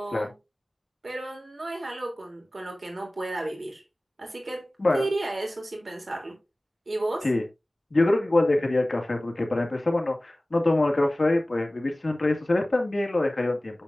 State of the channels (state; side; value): normal; both; correlation 0.98